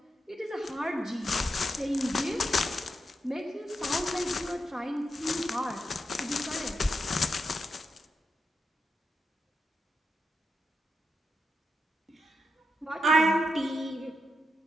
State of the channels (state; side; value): normal; both; correlation 0.86